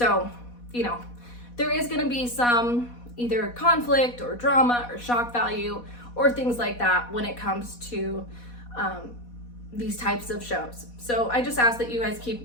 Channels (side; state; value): right; late; 4.1 ms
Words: you know, there is going to be some either conflict or drama or shock value or things like that when it comes to these types of shows. So I just ask that you guys keep